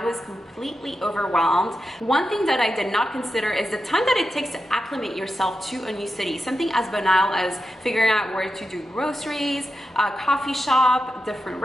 was completely overwhelmed. One thing that I did not consider is the time that it takes to acclimate yourself to a new city. Something as banal as figuring out where to do groceries, a coffee shop, different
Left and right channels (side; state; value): both; normal; correlation 0.89